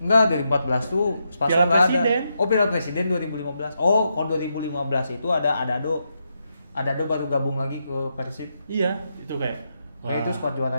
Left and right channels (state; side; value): inverted; both; correlation -0.83